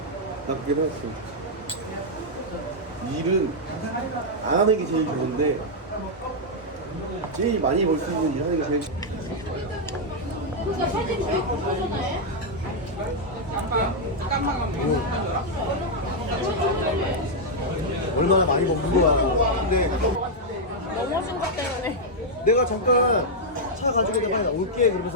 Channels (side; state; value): both; normal; correlation -0.03